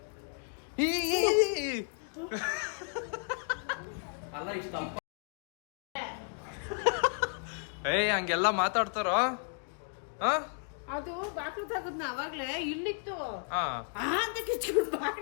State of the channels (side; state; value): right; silent; 56 dB below the other